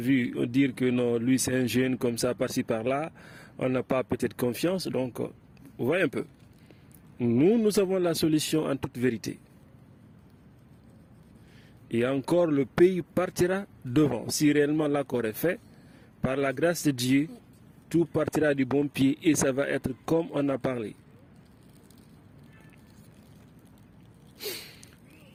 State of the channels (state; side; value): identical; both; correlation 1.00